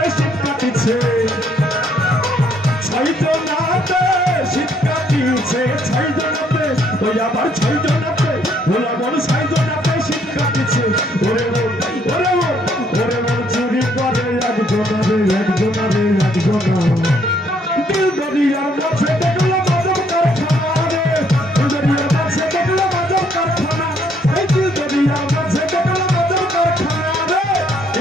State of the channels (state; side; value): normal; both; correlation 0.68